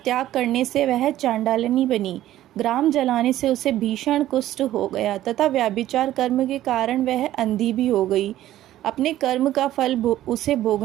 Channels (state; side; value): quieter; left; 13.6 dB